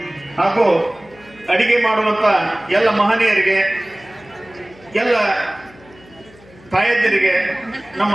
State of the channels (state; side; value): noise; left; hum, 25 dB below the sound